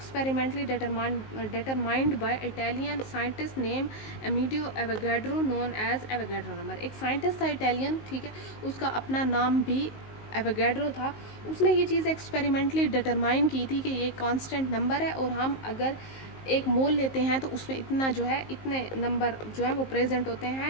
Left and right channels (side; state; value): right; late; 19 ms